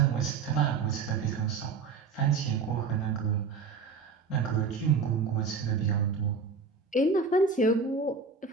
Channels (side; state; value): left; quieter; 5.1 dB